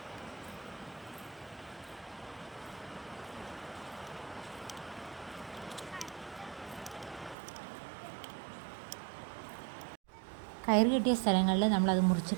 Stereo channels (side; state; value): left; drops out; at 7.4 s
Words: കയറ് കെട്ടിയ സ്ഥലങ്ങളിൽ നമ്മളത് മുറിച്ച്